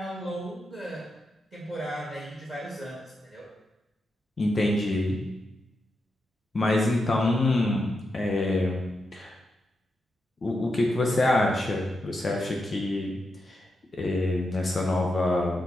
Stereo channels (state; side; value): normal; both; correlation 0.86